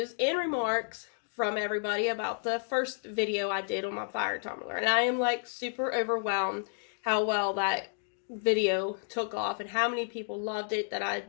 and remarks from everybody about the first video I did on my Fire Tumbler, and I am like super overwhelmed how well that video took off and how many people loved it, that I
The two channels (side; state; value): right; silent; digital silence